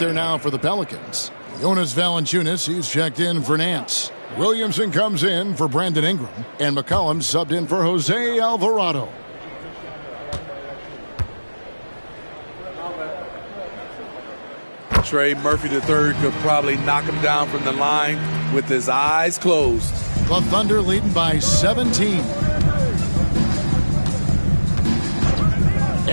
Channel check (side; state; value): both; inverted; correlation -1.00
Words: now for the Pelicans. Jonas Valanciunas, he's checked in for Nance. Williamson comes in for Brandon Ingram. And McCollum subbed in for Jose Alvarado. Trey Murphy III could probably knock him down from the line with his eyes closed. The Thunder leading by 17.